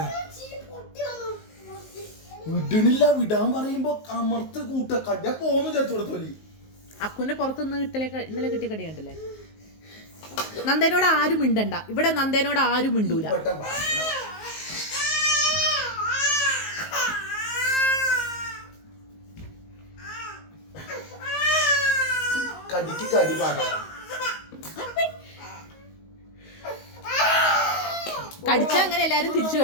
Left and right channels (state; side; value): late; right; 19 ms